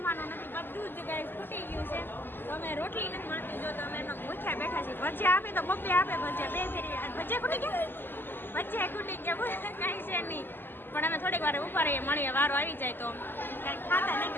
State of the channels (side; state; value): right; late; 0.096 ms